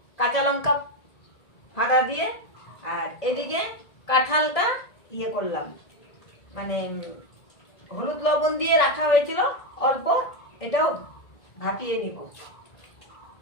কাঁচা লঙ্কা ফাড়া দিয়ে। আর এদিকে কাঁঠালটা ইয়ে করলাম, মানে হলুদ লবণ দিয়ে রাখা হয়েছিল অল্প, এটাও ভাপিয়ে নিব।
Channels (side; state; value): right; late; 1.7 ms